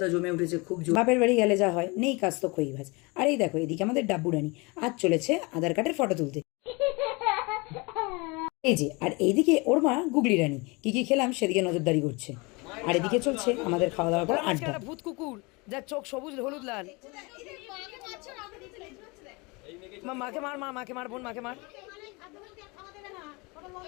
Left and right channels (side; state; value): right; quieter; 27.1 dB